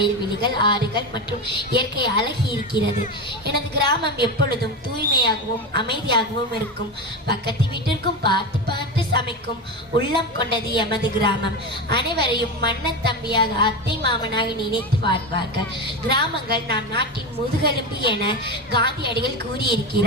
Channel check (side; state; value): both; normal; correlation 0.19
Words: ஆறுகள் மற்றும் இயற்கை அழகி இருக்கிறது. எனது கிராமம் எப்பொழுதும் தூய்மையாகவும் அமைதியாகவும் இருக்கும். பக்கத்து வீட்டிற்கும் பார்த்து பார்த்து சமைக்கும் உள்ளம் கொண்டது எமது கிராமம். அனைவரையும் மன்னன் தம்பியாக, அத்தை மாமனாக நினைத்து வாழ்வார்கள். கிராமங்கள் நாம் நாட்டின் முதுகெலும்பு என காந்தியடிகள்